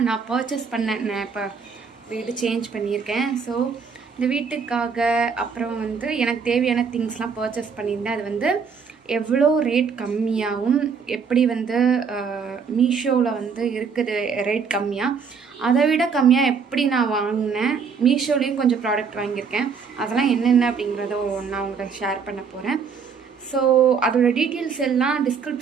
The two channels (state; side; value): quieter; left; 5.9 dB